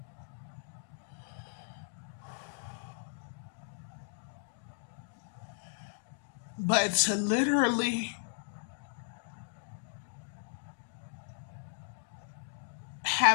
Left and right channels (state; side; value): silent; right; digital silence